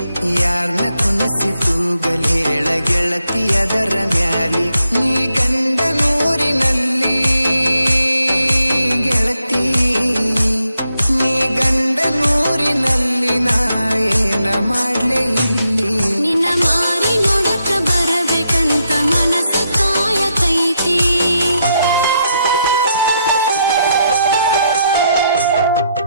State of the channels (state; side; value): inverted; both; correlation -0.79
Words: ಯಾರ್ನ ಕುನಸಿ ತೂಗಲ್ ಹೇಳ ಗೆಳತಿ ಅದರ ಮ್ಯಾಲಿ ನೀ ಗಂಡ ನೂರಿನಲ್ಲಿ ಗೆಳತಿ ನೀ ಗಂಡ ನೂರಿನಲ್ಲಿ ನಾ ಏನ ಮಾಡ್ಲೆ ಇಲ್ಲಿ ನಿನ್ನ ಮಾರಿ ನೋಡಕ ಬರಬೇಕಂತ ಮನಸ ಕಾಯತೈತಿ